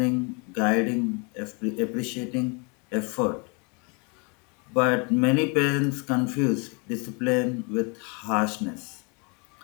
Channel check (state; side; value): quieter; right; 32.9 dB